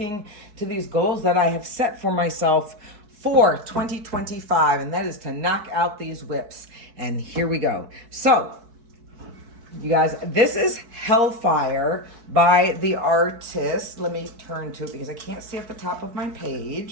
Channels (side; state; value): left; late; 4.6 ms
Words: to these goals that I have set for myself for 2025, and that is to knock out these whips. And here we go. So, you guys, this is Hellfire by the artist. Let me turn to it because I can't see at the top of my